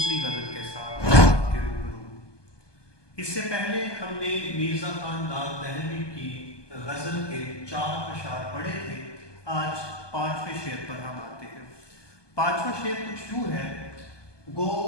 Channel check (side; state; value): right; late; 1.2 ms